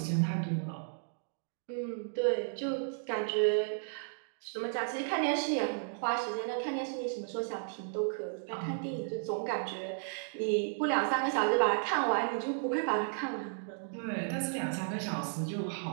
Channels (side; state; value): left; silent; digital silence